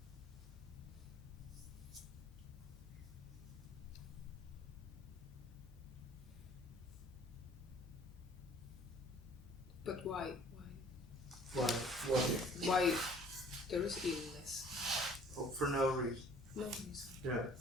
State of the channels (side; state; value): both; normal; correlation 0.53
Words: But why? Why? Why there is illness? Oh, for no reason. No reason. Yeah.